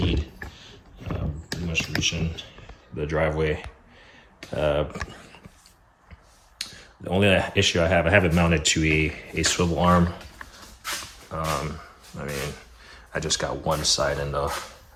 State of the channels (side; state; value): both; identical; correlation 1.00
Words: Pretty much reaching the driveway. The only issue I have it mounted to a swivel arm. I mean, I just got one side in the